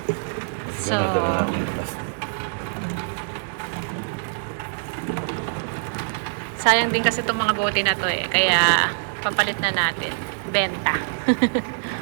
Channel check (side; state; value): left; silent; digital silence